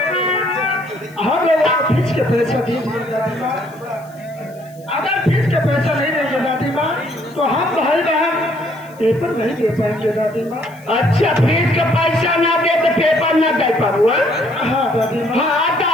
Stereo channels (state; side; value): noise; left; hiss, 27 dB below the sound